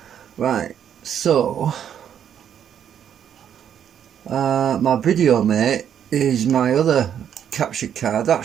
right? So my video mate is my other capture card. That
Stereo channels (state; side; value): quieter; left; 9.1 dB